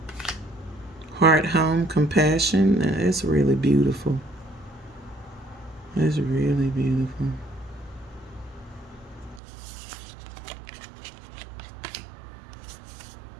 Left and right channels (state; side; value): drops out; left; at 9.4 s